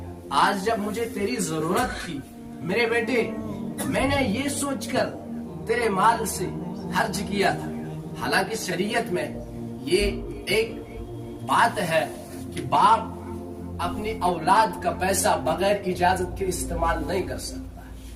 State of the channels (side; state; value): both; identical; correlation 1.00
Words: آج جب مجھے تیری ضرورت تھی میرے بیٹے, میں نے یہ سوچ کر تیرے مال سے خرچ کیا تھا. حالانکہ شریعت میں یہ ایک بات ہے کہ باپ اپنی اولاد کا پیسہ بغیر اجازت کے استعمال نہیں کر سکتا.